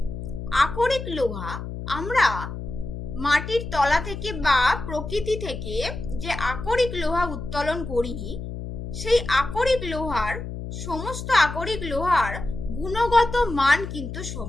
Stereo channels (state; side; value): noise; left; hum, 8 dB below the sound